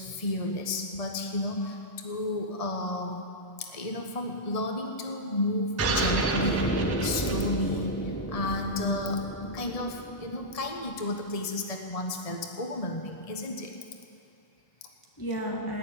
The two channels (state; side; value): late; right; 1.7 ms